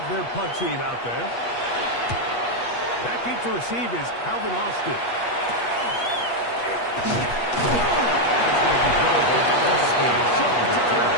their punt team out there. Back in to receive is Calvin Austin.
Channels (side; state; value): right; late; 8.3 ms